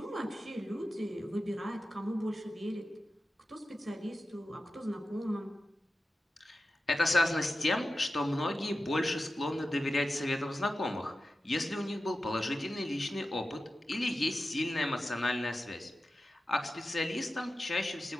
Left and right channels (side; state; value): both; normal; correlation 0.93